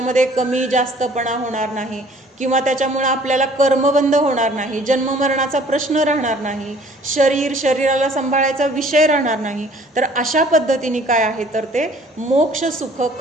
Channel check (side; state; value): both; normal; correlation 0.55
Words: कमी जास्तपणा होणार नाही किंवा त्याच्यामुळं आपल्याला कर्मबंध होणार नाही, जन्ममरणाचा प्रश्न राहणार नाही, शरीराला सांभाळायचा विषय राहणार नाही. तर अशा पद्धतीने काय आहे तर ते मोक्ष सुख,